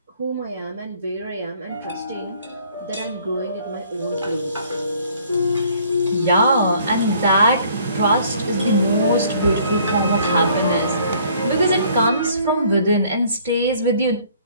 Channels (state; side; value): inverted; both; correlation -0.59